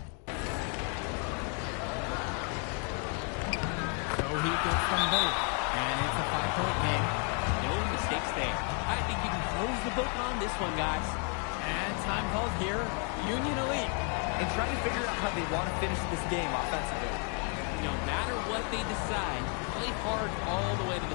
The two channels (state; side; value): quieter; right; 39.9 dB